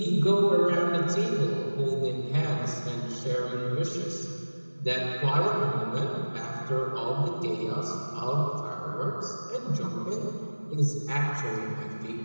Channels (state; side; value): inverted; both; correlation -1.00